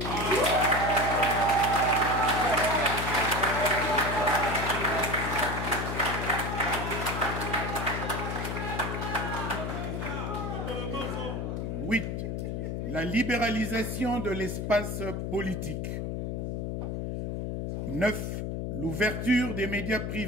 La libéralisation de l'espace politique. 9. L'ouverture des médias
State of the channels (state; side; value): noise; left; hum, 3 dB below the sound